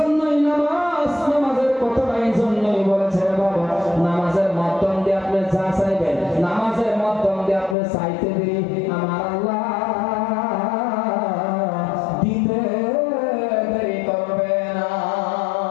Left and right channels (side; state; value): right; drops out; at 7.8 s